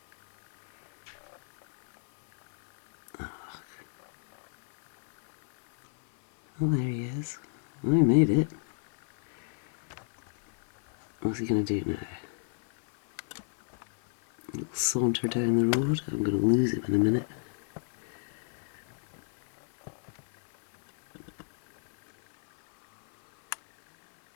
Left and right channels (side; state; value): right; silent; 57 dB below the other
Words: Oh, there he is. Oh, he made it. What's he going to do now? A little saunter down the road. I'm going to lose him in a minute.